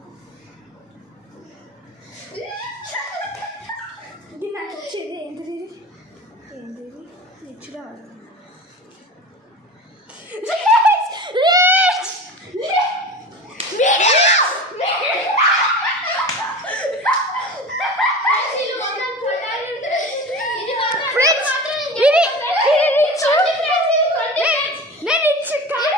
ఇది నాకు వచ్చేది ఏంటిది రిచ్గా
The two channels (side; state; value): both; normal; correlation 0.32